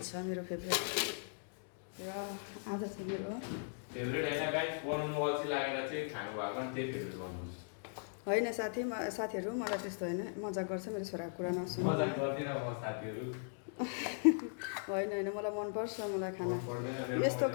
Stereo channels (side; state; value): right; silent; digital silence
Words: छ मेरो फेभरेट र आज चाहिँ मेरो फेभरेट हैन गाइस बनाउनु अल्छी लागेर चाहिँ खानु भएको नि त्यही फेभरेट गर्नु होइन साथीहरू मलाई त्यस्तो होइन मजाक गर्छ मेरो छोराको कुरा नसुन्नु मजाक गर्दिन म साथीहरू होइन मलाई मनपर्छ मलाई खाना यस्तो